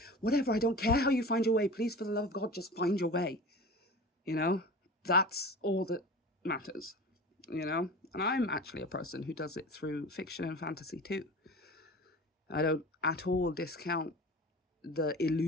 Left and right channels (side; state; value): both; normal; correlation 0.35